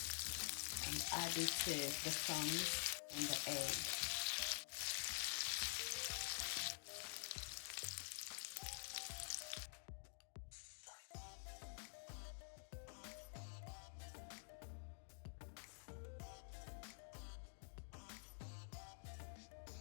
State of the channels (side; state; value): right; silent; digital silence